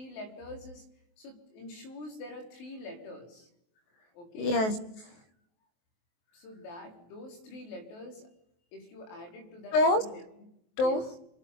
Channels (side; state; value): right; late; 23 ms